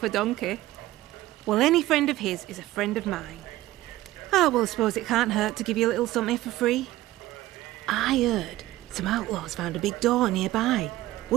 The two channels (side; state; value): left; quieter; 16.3 dB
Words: a donkey. Well, any friend of his is a friend of mine. Oh, well, I suppose it can't hurt to give you a little something for free. I heard some outlaws found a big door nearby,